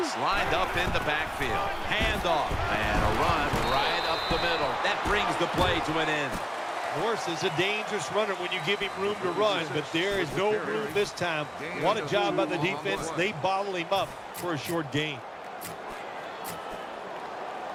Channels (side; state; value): both; identical; correlation 1.00